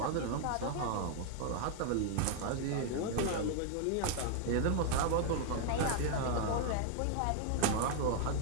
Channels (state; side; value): different; both; correlation 0.00